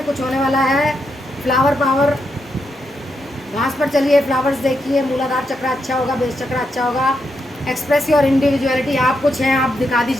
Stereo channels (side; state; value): both; normal; correlation 0.82